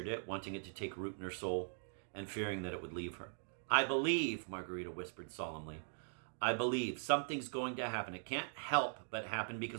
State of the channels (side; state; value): left; silent; digital silence